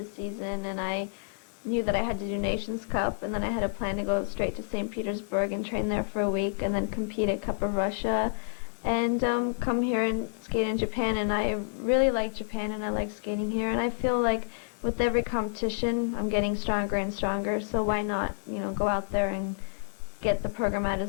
season, and I knew that I had to do Nations Cup, and then I had a plan to go straight to St. Petersburg and train there for a week and then compete at Cup of Russia. and come here and skate in Japan. And I really like Japan, and I like skating here. And I feel like with every competition, I'm getting stronger and stronger. So why not, go out there and get the program out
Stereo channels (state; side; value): silent; right; 58 dB below the other